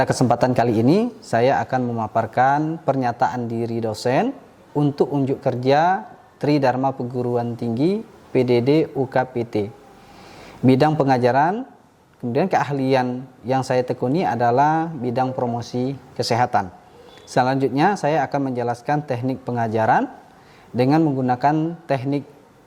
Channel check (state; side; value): identical; both; correlation 1.00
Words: kesempatan kali ini, saya akan memaparkan pernyataan diri dosen untuk unjuk kerja Tridharma Perguruan Tinggi PDD UKPT. Bidang pengajaran, kemudian keahlian yang saya tekuni adalah bidang promosi kesehatan. Selanjutnya saya akan menjelaskan teknik pengajaran dengan menggunakan teknik